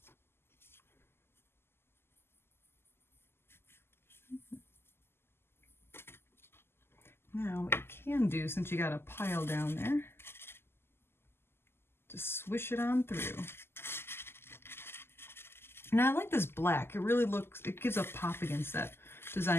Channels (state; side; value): late; right; 0.12 ms